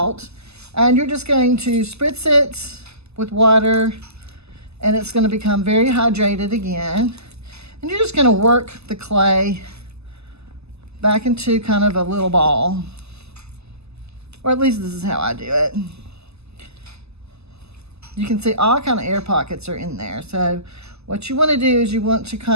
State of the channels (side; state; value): left; late; 0.79 ms